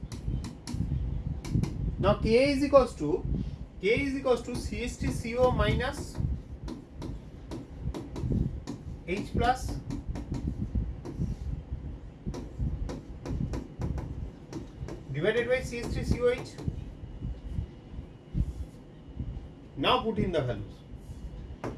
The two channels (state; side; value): identical; both; correlation 1.00